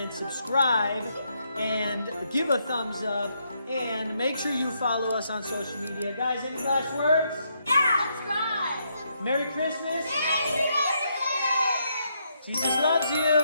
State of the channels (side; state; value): both; inverted; correlation -0.77